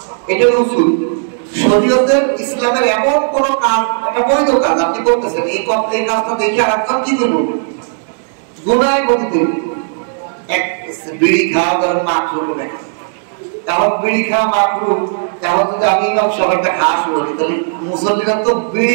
এটা উসুল। শরীয়তের ইসলামের এমন কোন কাজ, এটা বৈধ কাজ আপনি করতেছেন, এই কাজটা দেখে আর একজন কি করবো, গুনাহে পতিত হইবে। এক বিড়ি খাওয়া ধরেন মাকরুহ হবে, তাহলে বিড়ি খাওয়া মাকরুহ, তাহলে যদি আমি ইমাম সাহেব একটা খাওয়া শুরু করি, তাহলে মুসল্লিরা তো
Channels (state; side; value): silent; left; digital silence